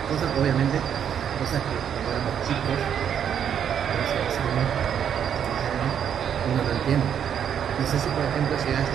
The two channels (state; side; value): quieter; left; 8.7 dB